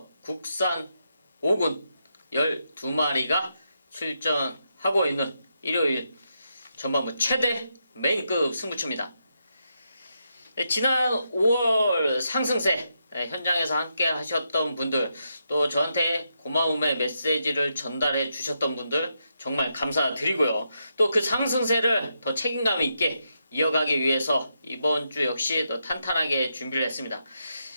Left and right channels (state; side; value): inverted; both; correlation -0.82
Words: 국산 5군 12마리가 출전하고 있는 일요일 전반부 최대 메인급 승부처입니다. 지난 5월 상승세 현장에서 함께 하셨던 분들, 또 저한테 고마움의 메시지를 전달해 주셨던 분들 정말 감사드리고요. 또 그 상승세를 더 책임감 있게 이어가기 위해서 이번 주 역시 더 탄탄하게 준비를 했습니다.